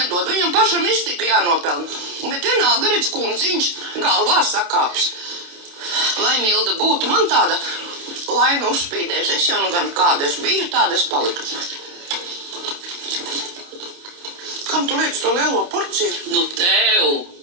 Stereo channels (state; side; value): late; left; 29 ms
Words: Viņam pašam iztika jānopelna. Bet vienalga redz kundziņš galvā sakāps. Lai Milda būtu man tāda laina uzspīdēs. Es jau nu gan kāda es biju, tāda es paliku. Kam tu liec to lielo porciju? Nu, tev,